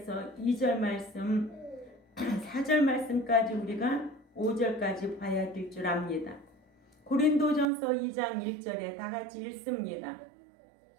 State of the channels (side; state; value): left; drops out; at 7.7 s